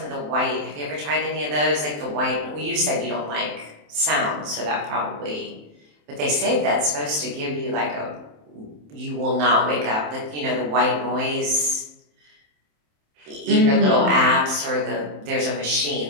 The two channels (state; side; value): late; left; 27 ms